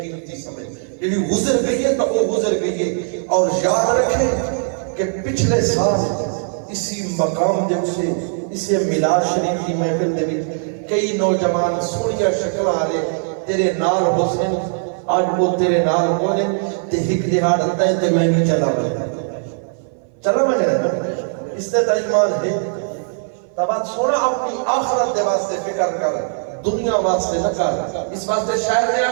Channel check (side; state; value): left; silent; 58 dB below the other